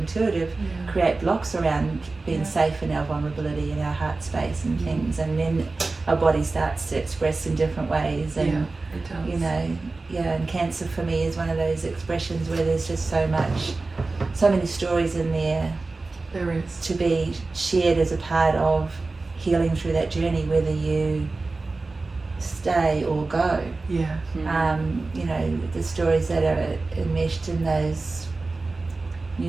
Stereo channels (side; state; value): left; quieter; 3.6 dB